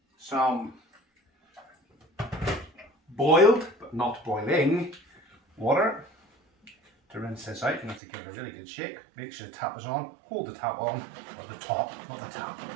some boiled, but not boiling, water to rinse this out. You have to give it a really good shake. Make sure the tap is on. Hold the tap on, or the top, not the tap.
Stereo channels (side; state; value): left; drops out; at 8.0 s